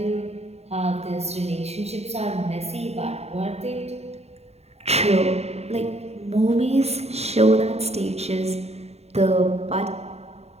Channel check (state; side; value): late; left; 0.31 ms